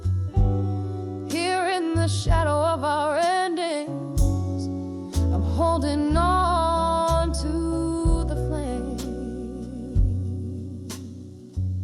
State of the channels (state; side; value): identical; both; correlation 1.00